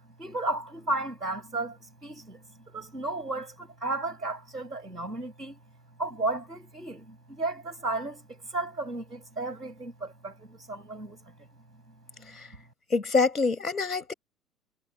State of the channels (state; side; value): normal; both; correlation 0.33